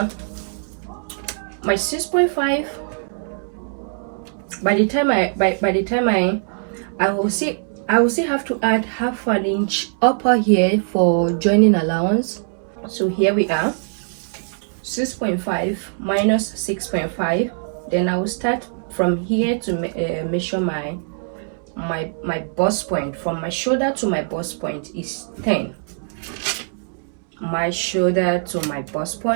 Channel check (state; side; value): silent; left; digital silence